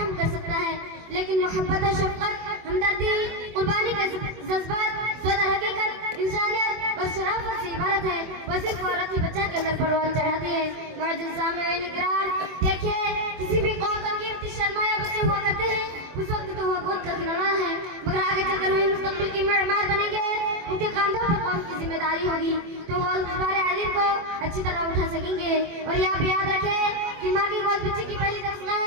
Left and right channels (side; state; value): left; late; 24 ms